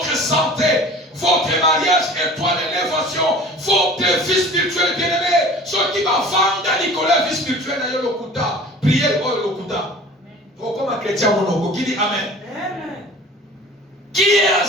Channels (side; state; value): both; normal; correlation 0.43